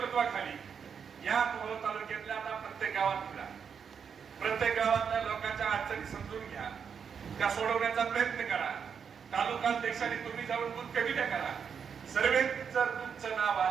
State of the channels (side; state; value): left; quieter; 6.8 dB